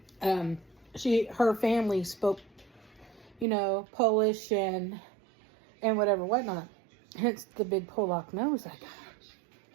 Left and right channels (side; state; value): left; drops out; at 3.5 s